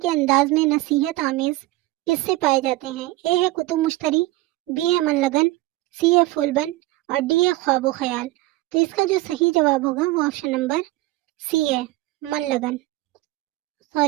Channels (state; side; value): quieter; left; 18.3 dB